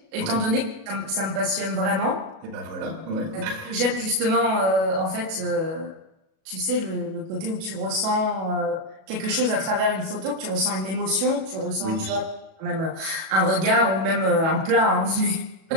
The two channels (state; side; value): late; left; 37 ms